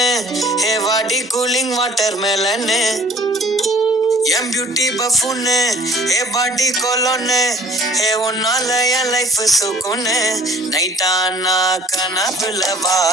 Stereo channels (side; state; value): both; normal; correlation 0.52